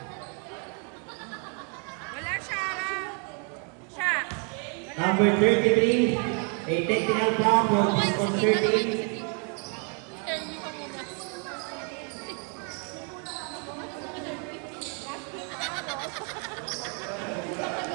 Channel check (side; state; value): left; quieter; 38.4 dB